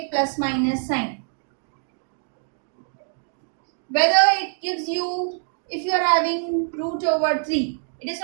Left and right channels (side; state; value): left; silent; digital silence